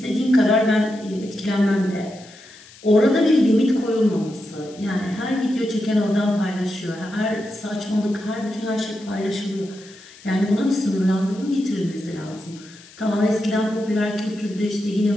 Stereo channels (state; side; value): noise; left; hiss, 22 dB below the sound